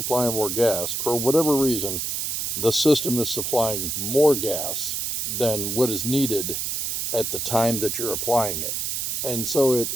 more gas, for whatever reason, the system is supplying more gas than what is needed at the time that you're applying it. And so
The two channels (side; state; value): right; noise; hiss, 1 dB below the sound